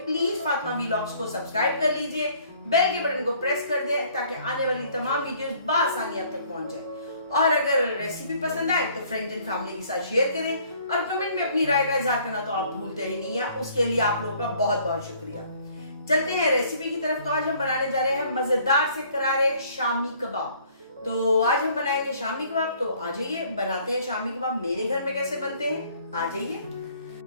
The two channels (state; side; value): inverted; both; correlation -0.59